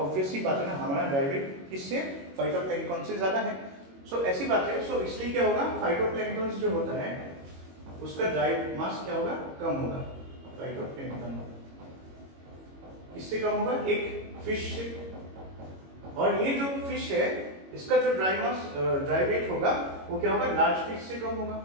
सी बात है ना, हमारा ड्राई वेट किससे, फाइटोप्लैंक्टन से ज्यादा है। सो ऐसी बात है, सो इसलिए क्या होगा, फाइटोप्लैंक्टन जो होता है उसका ड्राई मास क्या होगा, कम होगा, फाइटोप्लैंक्टन इससे कम होगा, एक फिश से। और ये जो फिश है इसका जो ड्राई मास ड्राई वेट होगा वो क्या होगा, लार्ज फिश से कम होगा,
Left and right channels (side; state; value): left; late; 22 ms